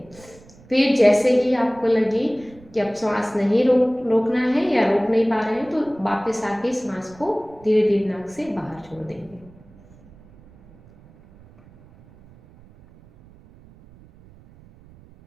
फिर जैसे ही आपको लगे कि अब श्वास नहीं रोकना है या रोक नहीं पा रहे हैं, तो वापस आके सांस को धीरे धीरे नाक से बाहर छोड़ देंगे।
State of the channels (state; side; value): noise; right; rumble, 25 dB below the sound